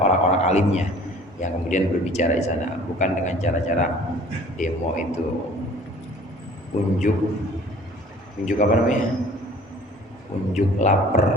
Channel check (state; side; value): normal; both; correlation 0.50